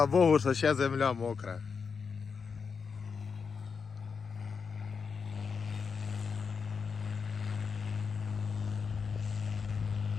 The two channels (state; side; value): quieter; right; 5.6 dB